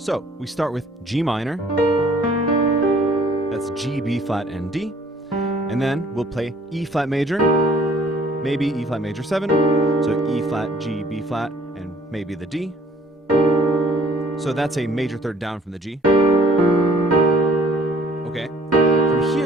we start with G minor, that's G, B flat, and D, and then we'll play E flat major, maybe E flat major 7, so E flat, G, B flat, and maybe the D. So that's a major third down from the G. Okay, from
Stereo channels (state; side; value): normal; both; correlation 0.58